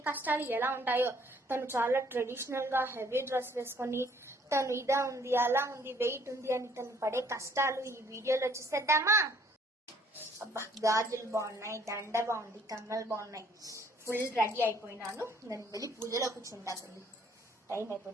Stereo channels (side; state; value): both; normal; correlation 0.62